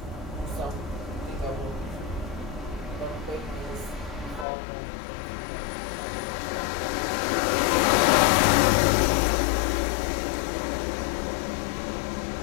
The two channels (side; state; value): right; drops out; at 4.5 s